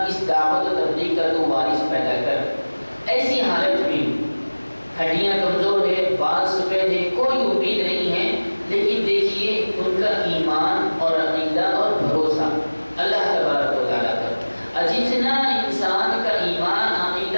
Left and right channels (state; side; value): inverted; both; correlation -1.00